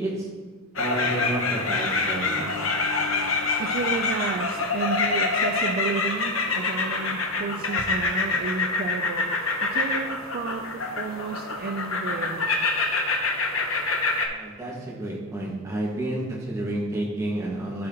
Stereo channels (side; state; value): both; normal; correlation 0.13